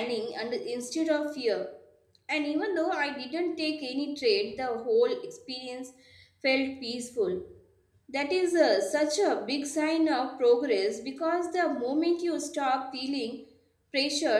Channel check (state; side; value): identical; both; correlation 1.00